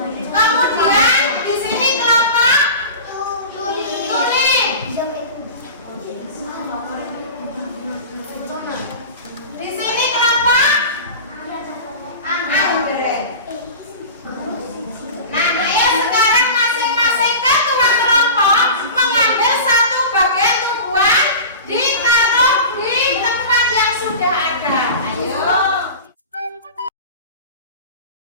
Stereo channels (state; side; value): inverted; both; correlation -0.33